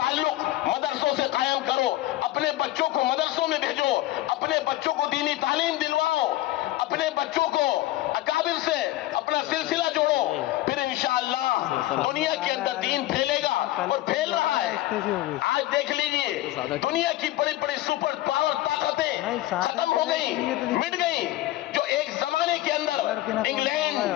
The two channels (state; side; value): quieter; right; 16.2 dB